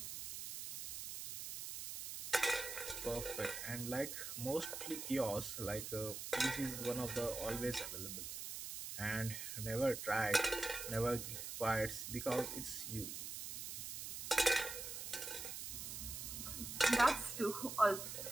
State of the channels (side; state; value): right; noise; hiss, 6 dB below the sound